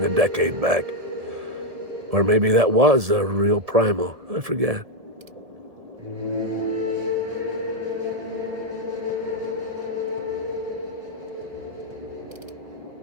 a decade back. Or maybe that was a real primal, I forget.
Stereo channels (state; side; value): late; left; 1.7 ms